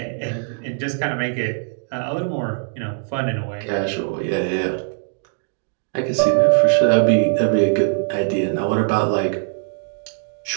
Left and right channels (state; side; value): silent; left; digital silence